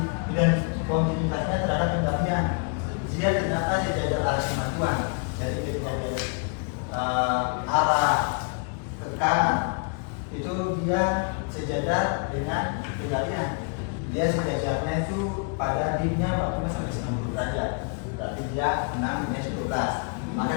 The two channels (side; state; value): right; quieter; 39.7 dB